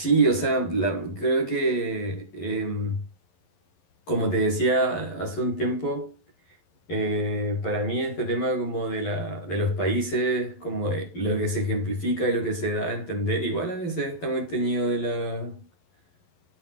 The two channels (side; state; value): right; late; 11 ms